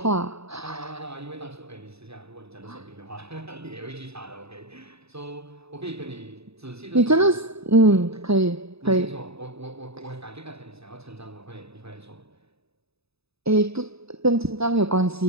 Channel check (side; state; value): left; late; 0.79 ms